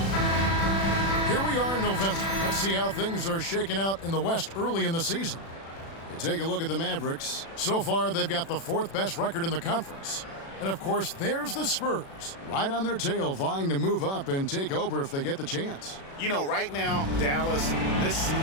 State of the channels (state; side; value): late; right; 36 ms